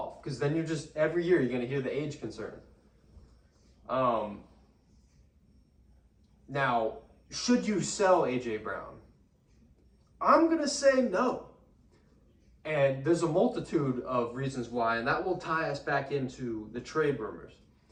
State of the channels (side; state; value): both; identical; correlation 1.00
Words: Because then every year you're going to hear the age concern. Now, should you sell A.J. Brown? I'm going to say no. And there's a multitude of reasons why, and that will tie us back into the trade rumors.